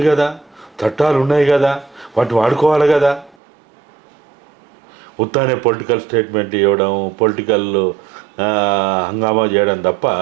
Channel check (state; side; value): drops out; left; at 3.4 s